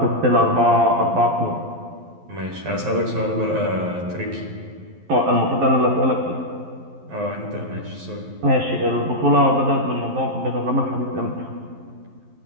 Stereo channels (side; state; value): left; late; 11 ms